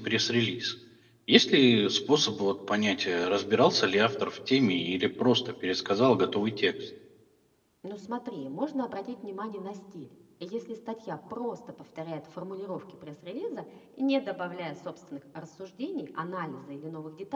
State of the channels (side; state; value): both; identical; correlation 1.00